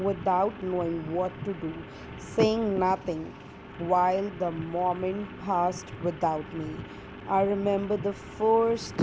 without knowing what to do, saying nothing, while the moment passed without me. I remember the first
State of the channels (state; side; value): identical; both; correlation 1.00